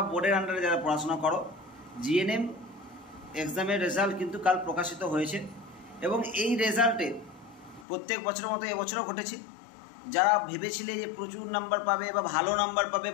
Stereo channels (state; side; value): drops out; right; at 7.9 s